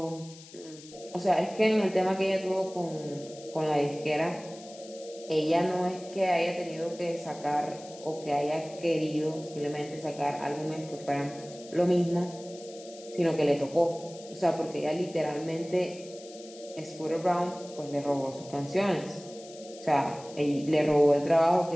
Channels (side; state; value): left; noise; hiss, 19 dB below the sound